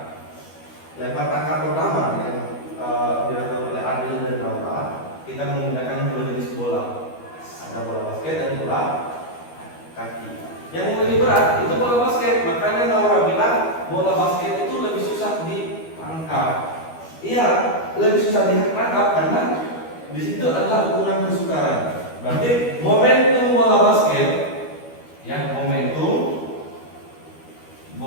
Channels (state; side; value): late; right; 12 ms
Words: Lempar tangkap pertama yang dilakukan oleh Adil dan Laura, kita menggunakan dua jenis bola. Ada bola basket dan bola kaki. Yang lebih berat itu bola basket, makanya Laura bilang bola basket itu lebih susah ditangkap. Iya, lebih susah ditangkap karena di situ adalah ukuran kesukaran. Berarti momentum bola basket, ya momentum